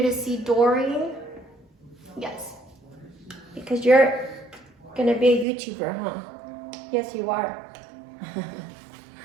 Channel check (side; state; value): left; drops out; at 5.5 s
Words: to see Dory, yes, because you're gonna be a YouTuber, huh? Yes, you are.